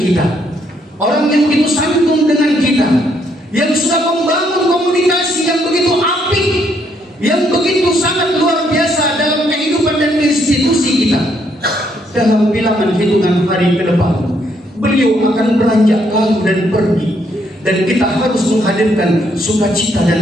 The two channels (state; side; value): normal; both; correlation 0.72